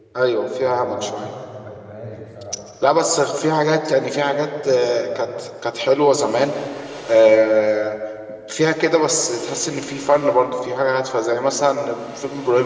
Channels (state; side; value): identical; both; correlation 1.00